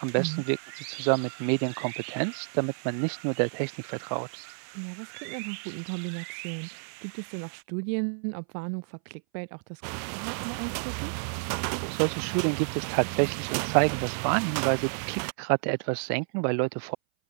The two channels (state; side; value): silent; left; 58 dB below the other